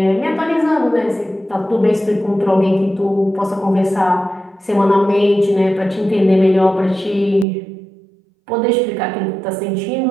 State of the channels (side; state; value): left; drops out; at 7.5 s